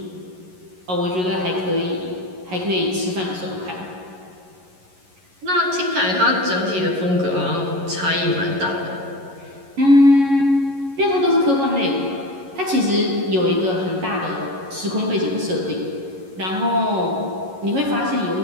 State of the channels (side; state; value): left; late; 11 ms